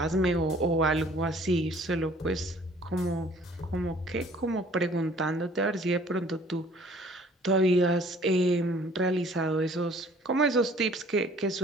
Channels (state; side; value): normal; both; correlation 0.54